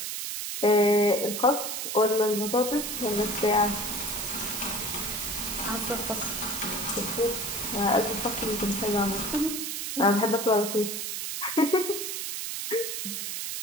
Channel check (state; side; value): noise; right; hiss, 4 dB below the sound